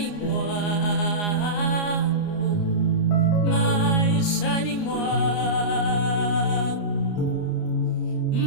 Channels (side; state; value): right; late; 29 ms